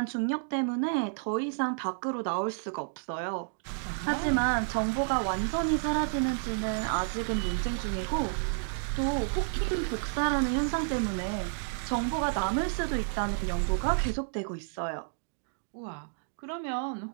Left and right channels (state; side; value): silent; left; digital silence